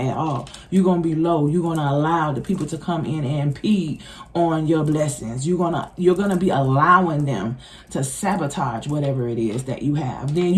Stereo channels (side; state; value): both; identical; correlation 1.00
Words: at all. You're going to be low. You're going to allow the people to come in and impede on your blessings. You're going to be allowing them to sabotage whatever it is that you have. Then